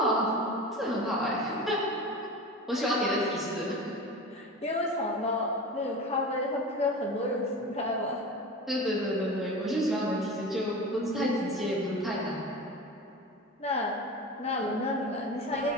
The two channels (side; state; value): both; normal; correlation 0.31